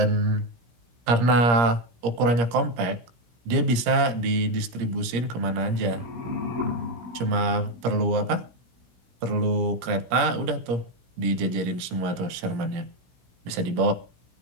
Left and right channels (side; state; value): left; late; 17 ms